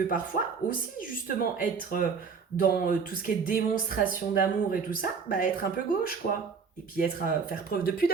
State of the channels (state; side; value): quieter; left; 5.6 dB